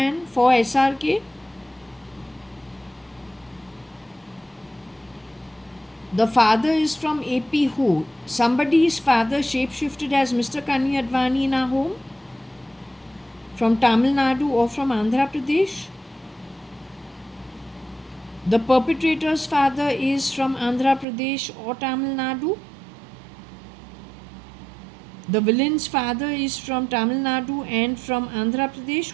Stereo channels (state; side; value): drops out; left; at 21.1 s